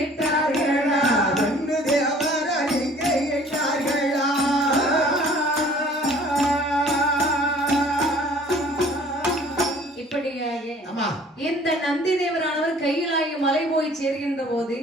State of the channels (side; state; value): both; normal; correlation 0.52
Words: ரெண்டு தேவர் அறிக்கையிட்டார்களா. இப்படியாக ஆமா இந்த நந்தி தேவரானவர் கையிலாகி மலை போய் சேர்கின்ற போது